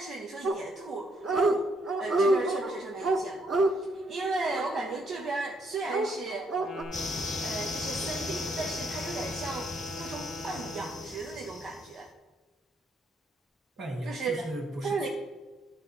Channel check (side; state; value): both; normal; correlation 0.73